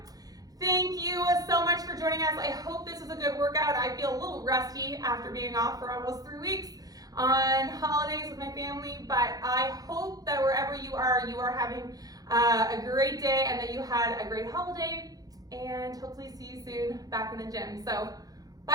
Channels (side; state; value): left; late; 0.18 ms